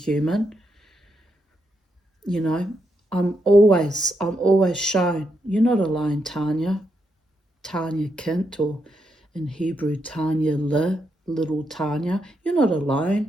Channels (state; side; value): normal; both; correlation 0.81